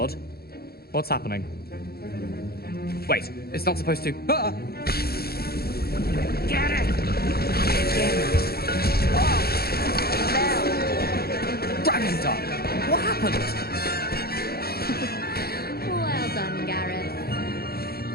What's happening? Wait, it's not supposed to... Ah! Get it! Dragon Dog! What happened? Well done, Gareth.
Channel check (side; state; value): right; late; 0.45 ms